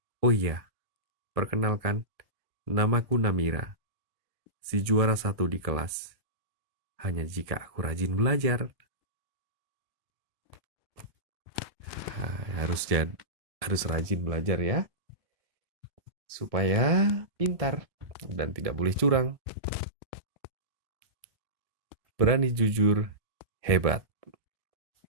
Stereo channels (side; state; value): left; late; 1.7 ms